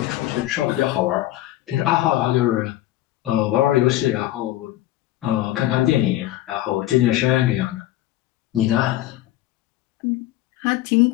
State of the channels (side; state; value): right; quieter; 15.0 dB